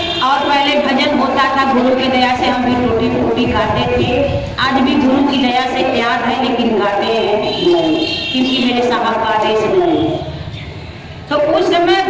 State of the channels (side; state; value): both; identical; correlation 1.00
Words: और पहले भजन होता था, गुरु की दया से हम भी टूटी फूटी गाते थे। आज भी गुरु की दया से याद है, लेकिन गाते हैं नहीं, क्योंकि मेरे साहब का आदेश नहीं। तो उस समय